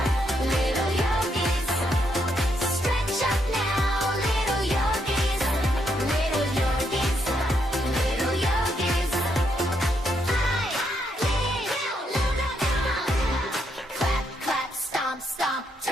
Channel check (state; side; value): normal; both; correlation 0.77